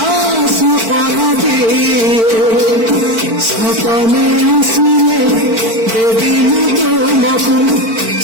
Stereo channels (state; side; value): late; left; 4.5 ms